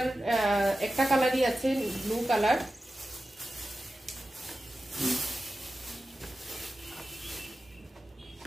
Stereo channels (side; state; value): both; normal; correlation 0.93